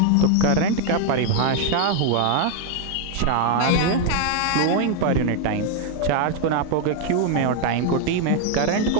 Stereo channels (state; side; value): different; both; correlation 0.00